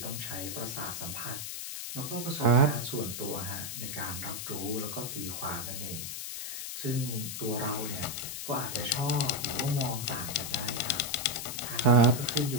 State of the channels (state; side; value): noise; left; hiss, 6 dB below the sound